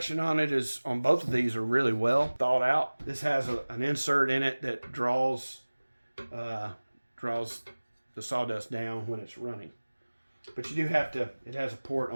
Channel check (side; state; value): both; inverted; correlation -1.00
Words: on both of these are really well thought out. This has an insert in it that draws the sawdust down when it's running. But you do have to, it has a port